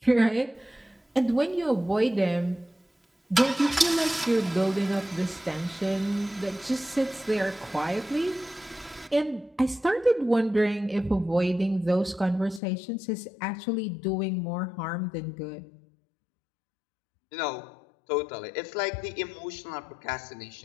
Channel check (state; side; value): drops out; right; at 12.6 s